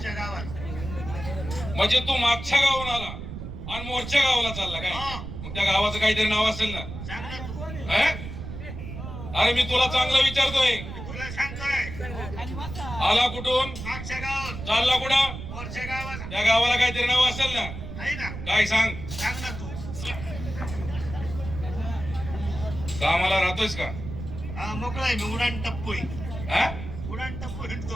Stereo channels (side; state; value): right; noise; rumble, 9 dB below the sound